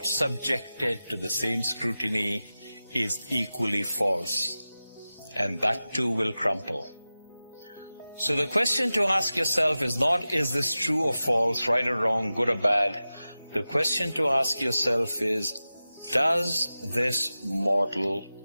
subjected to the same scrutiny, is equally false. And that too will crumple. So the question to ask yourself is not, is this true or false, right or wrong, good or bad? The question to ask yourself is, does this model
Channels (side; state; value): both; inverted; correlation -0.95